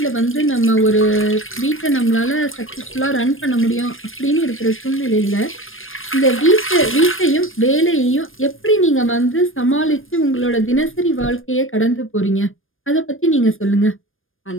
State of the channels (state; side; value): late; right; 0.59 ms